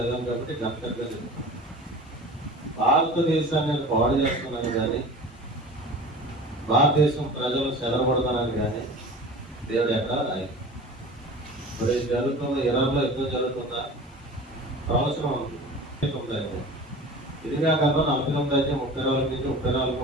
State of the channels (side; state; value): both; normal; correlation 0.38